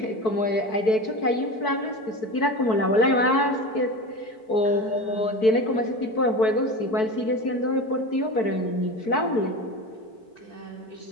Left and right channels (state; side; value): late; right; 4.6 ms